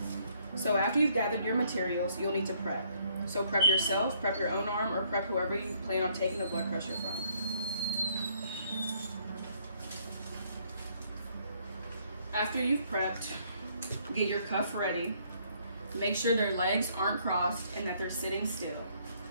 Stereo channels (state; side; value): inverted; both; correlation -0.67